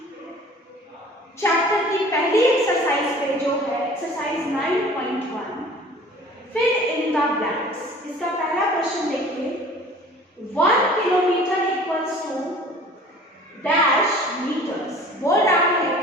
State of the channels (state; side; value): normal; both; correlation 0.47